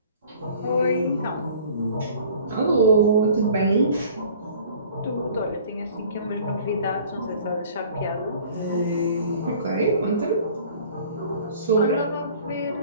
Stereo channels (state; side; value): inverted; both; correlation -0.49